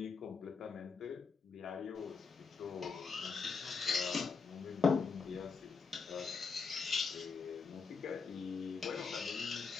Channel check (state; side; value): quieter; right; 5.0 dB